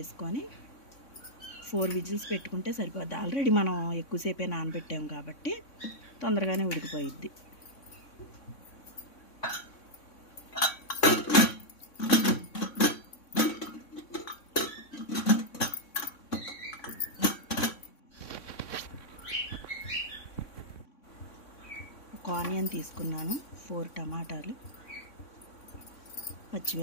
4 విజిల్స్ పెట్టుకుంటే సరిపోద్ది. ఆల్రెడీ మనం ఎక్కువసేపే నానబెట్టాము కాబట్టి తొందరగానే ఉడికిపోయిద్ది. ఒక ఆనియన్ తీసుకున్నాను, 4 టమాటాలు,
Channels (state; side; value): late; right; 3.6 ms